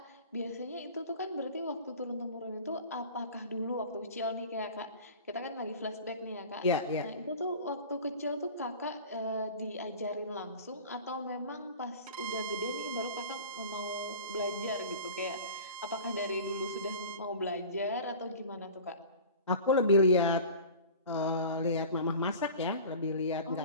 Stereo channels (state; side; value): inverted; both; correlation -0.39